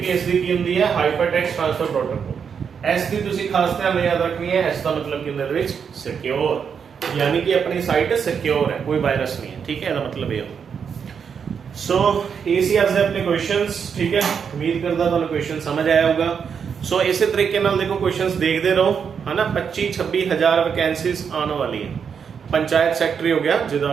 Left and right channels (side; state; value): left; quieter; 6.8 dB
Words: दी की होंदी है, हाइपरटेक्स्ट ट्रांसफर प्रोटोकॉल। S दी तुसी खास ध्यान याद रखनी है, S का मतलब कि अंदर विच सिक्योर, यानी कि अपनी साइट सिक्योर है, कोई वायरस नहीं है, ठीक है, ਇਹਦਾ मतलब ये सो ये सी आज अपने क्वेश्चंस, ठीक है। उम्मीद करता तुहानू क्वेश्चन समझ आया होगा। सो इसी तरीके नाल देखो क्वेश्चंस देखते रहो, है ना। 25-26 हज़ार वैकेंसीज आने वाली है। पंचायत सैकटरी हो गया, जिदा